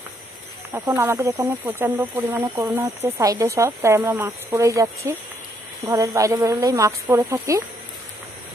এখন আমাদের এখানে প্রচণ্ড পরিমাণে করোনা হচ্ছে সাইডে সব, তাই আমরা মাস্ক পরেই যাচ্ছি। ঘরের বাইরে বেরোলেই মাস্ক পরে থাকি।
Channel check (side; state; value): both; normal; correlation 0.72